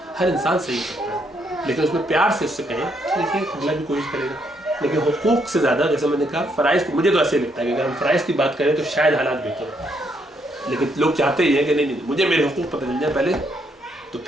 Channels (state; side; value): normal; both; correlation 0.74